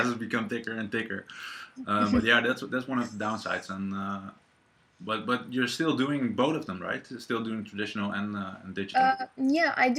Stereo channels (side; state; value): both; identical; correlation 1.00